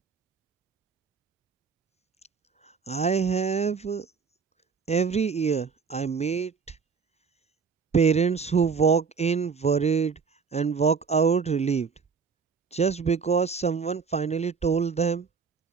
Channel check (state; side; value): quieter; left; 5.6 dB